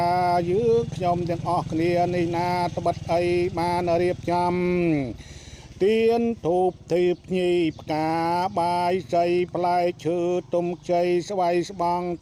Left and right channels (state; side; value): identical; both; correlation 1.00